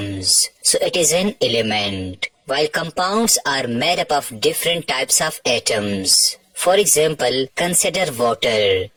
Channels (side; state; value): both; identical; correlation 1.00